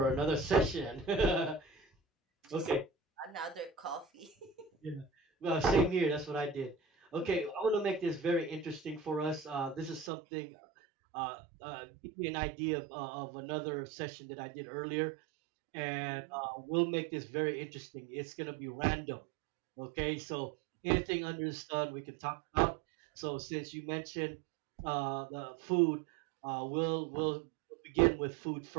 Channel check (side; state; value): left; drops out; at 10.1 s